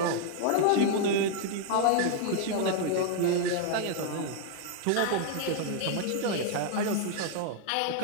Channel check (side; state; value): both; different; correlation -0.01